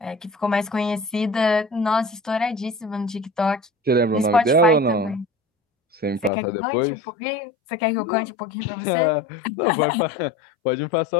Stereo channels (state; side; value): drops out; right; at 6.3 s